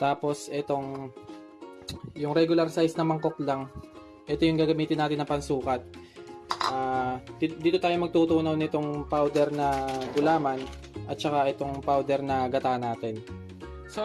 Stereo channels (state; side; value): identical; both; correlation 1.00